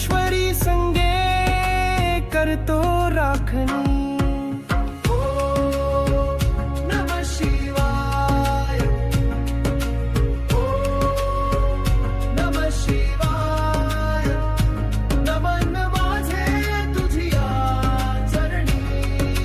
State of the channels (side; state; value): both; identical; correlation 1.00